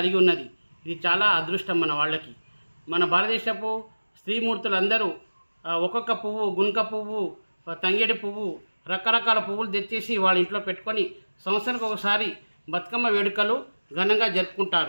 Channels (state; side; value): inverted; both; correlation -1.00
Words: ఉన్నది. ఇది చాలా అదృష్టం మన వాళ్ళకి. మన భారతదేశపు స్త్రీమూర్తులందరూ ఒక్కొక్క పువ్వు, గునుక పువ్వు, తంగేడి పువ్వు, రకరకాల పువ్వులు తెచ్చేసి వాళ్ళ ఇంట్లో పెట్టుకొని సంవత్సరానికి ఒకసారి బతుకమ్మ వేడుకలు ఘనంగా